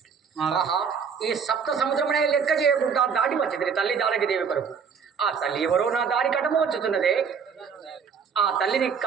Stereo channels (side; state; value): left; quieter; 6.3 dB